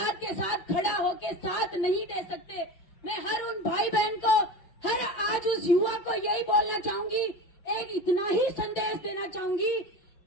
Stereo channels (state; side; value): late; right; 5.7 ms